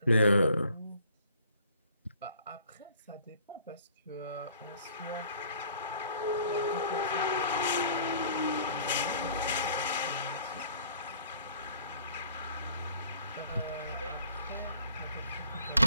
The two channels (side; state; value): both; inverted; correlation -0.56